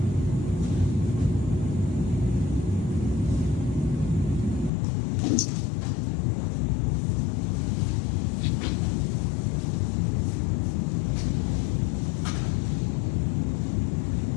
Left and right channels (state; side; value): drops out; right; at 4.7 s